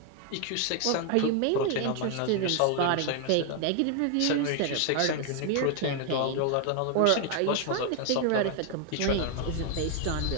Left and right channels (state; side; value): different; both; correlation 0.00